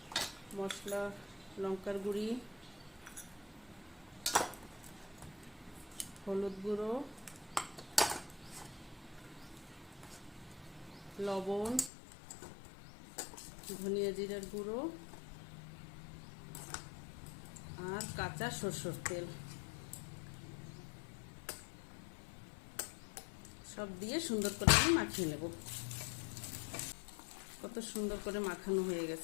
মশলা লঙ্কার গুঁড়ি, হলুদ গুঁড়ো, লবণ, ধনিয়া জিরার গুঁড়ো আর কাঁচা সরষের তেল সব দিয়ে সুন্দর করে আমি মাখিয়ে নেব। কত সুন্দর করে মাখানো হয়ে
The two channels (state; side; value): drops out; right; at 11.9 s